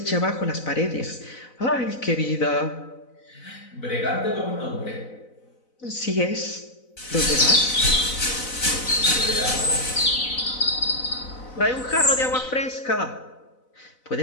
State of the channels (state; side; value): late; right; 4.0 ms